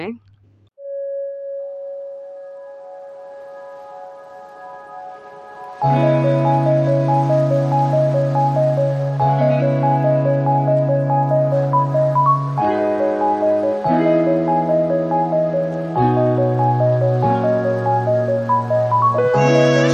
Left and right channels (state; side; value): identical; both; correlation 1.00